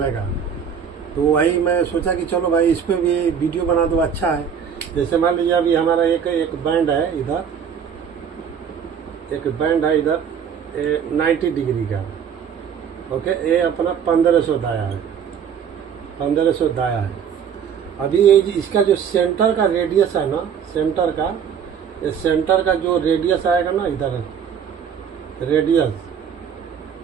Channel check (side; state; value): left; quieter; 7.5 dB